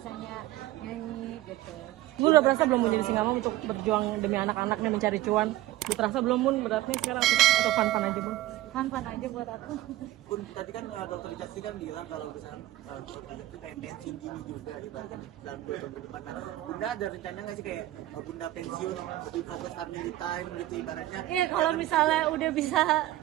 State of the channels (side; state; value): left; quieter; 15.8 dB